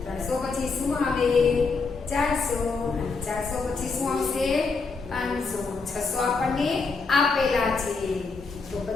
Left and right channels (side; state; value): right; quieter; 4.4 dB